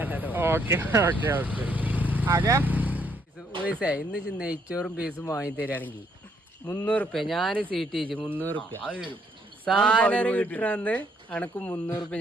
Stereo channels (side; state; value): both; normal; correlation 0.71